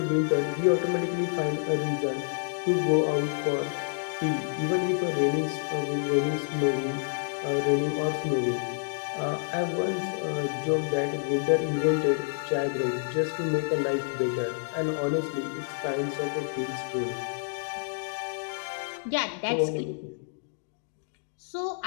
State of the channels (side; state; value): right; silent; digital silence